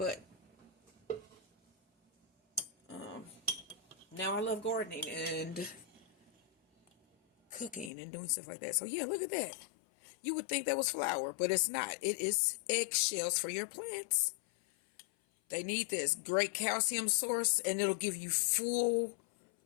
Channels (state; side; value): drops out; right; at 7.9 s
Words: now I love gardening and cooking and doing stuff like that. So yeah, look at that. You would think that was flour, but it's not. It is eggshells for your plants. They need this great calcium source, and it'll give you full,